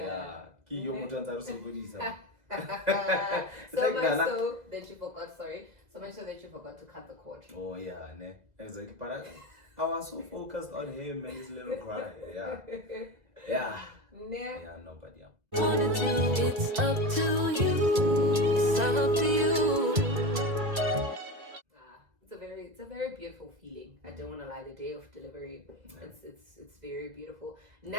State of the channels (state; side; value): late; left; 2.0 ms